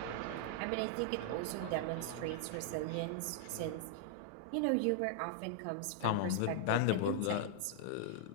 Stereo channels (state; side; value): different; both; correlation -0.01